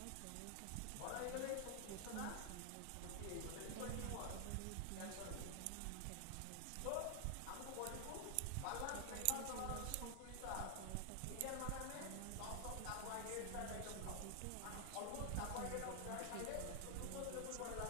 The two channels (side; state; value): both; different; correlation 0.00